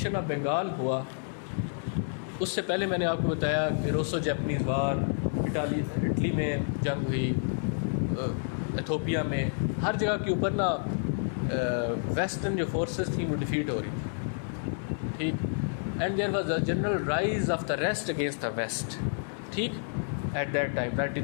آف بنگال ہوا اس سے پہلے میں نے آپ کو بتایا کہ روسو جیپنیز وار, اٹلی میں جنگ ہوئی, ایتھوپیا میں, ہر جگہ کے اوپر نا ویسٹرن جو فورسز تھیں وہ ڈیفیٹ ہو رہی تھی. ٹھیک, and there was a general rise of the rest against the west. ٹھیک, ایٹ دیٹ ٹائم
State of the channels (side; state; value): right; silent; 58 dB below the other